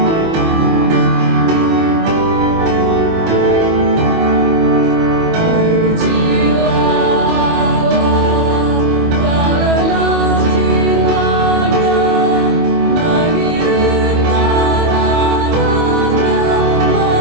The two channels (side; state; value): left; late; 25 ms